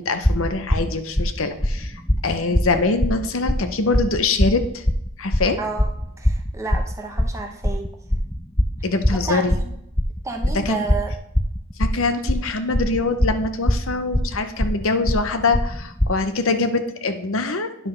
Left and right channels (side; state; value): both; normal; correlation 0.49